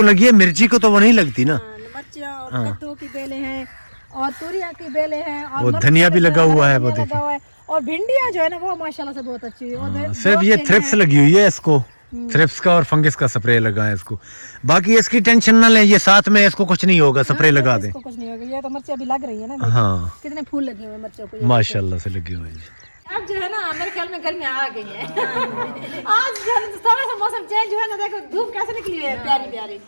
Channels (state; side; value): inverted; both; correlation -1.00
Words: लगी है, मिर्ची को तो वो नहीं लगती ना। मिर्चियां और कद्दू की बेलें हैं और तूरियां की बेलें हैं और वो मरचा धनिया भी लगा हुआ है, वो धनिया देखिए। लगा हुआ है। और भिंडियां जो है ना वो माशाल्लाह से बहुत अच्छी है। और सिर्फ ये थ्रिप्स लगी हुई है इसको। थ्रिप्स का और फंगस का स्प्रे लगाएं इसको। बाकी इसकी टेंशन ना लें, ये साथ में इसको कुछ नहीं होगा, स्प्रे लगा दें। इसको कुछ नहीं होगा, ये तो मिर्ची अभी लग रही है ना, हाँ कितने फूल लगे हुए हैं मिर्चों को, माशाल्लाह से लगे हुए हैं। अब जो है ना मेरे ख्याल में गर्मी आ गई है। आज जो है थोड़ा सा मौसम चेंज हुआ ना, देखो धूप कैसे निकली है प्यारी प्यारी।